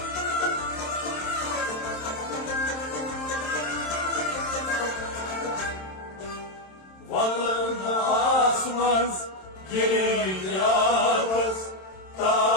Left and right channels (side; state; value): right; late; 27 ms